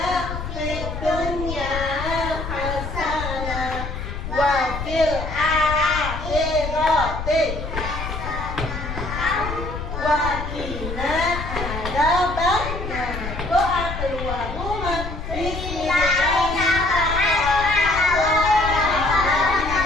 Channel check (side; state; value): left; noise; rumble, 6 dB below the sound